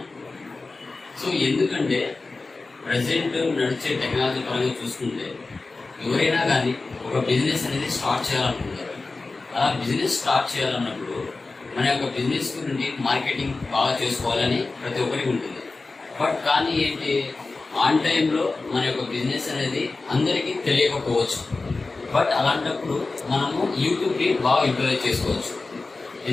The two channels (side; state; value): right; quieter; 3.6 dB